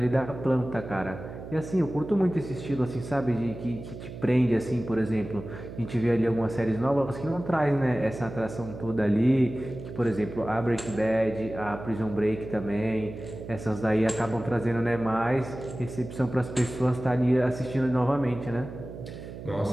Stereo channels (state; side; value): noise; right; hum, 12 dB below the sound